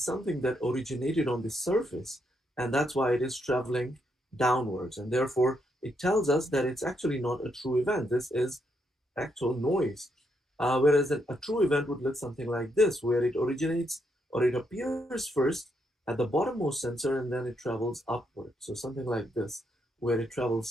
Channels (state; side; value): normal; both; correlation 0.78